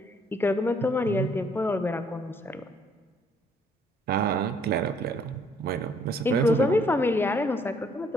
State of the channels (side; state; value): both; normal; correlation 0.65